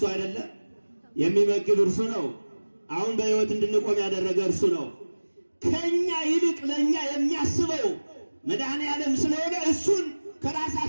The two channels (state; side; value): inverted; both; correlation -1.00